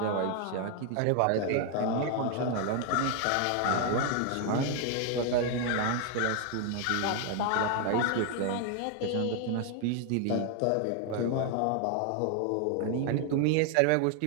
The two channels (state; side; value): different; both; correlation 0.00